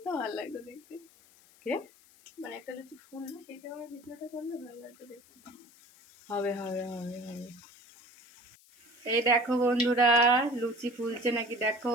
ভালো লাগতো দেখতে। কে মানে একটা লুচি ফুললো, সেই সময় ভিডিওটা করলে ভালো লাগতো দেখতে। হবে হবে হবে হবে। এই দেখো বন্ধুরা, লুচি ফুলছে নাকি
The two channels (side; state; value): left; noise; hiss, 27 dB below the sound